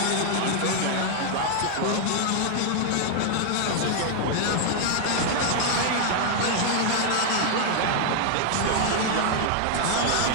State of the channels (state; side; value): different; both; correlation 0.00